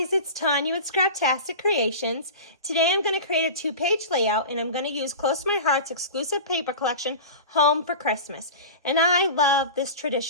it's Tanya with Scraptastic Creations. Today I'm going to create a 2-page layout and I'm going to use Close to My Heart's exclusive paper collection, Home for Christmas. And I love this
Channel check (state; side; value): inverted; both; correlation -0.31